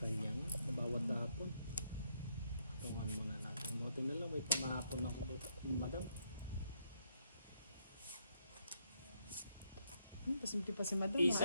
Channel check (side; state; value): both; inverted; correlation -0.75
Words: nga. Bawat hapon. Patungan mo na natin. Buti na lang. May pamahapon ako dito. Madam. Pasimpi pa si madam.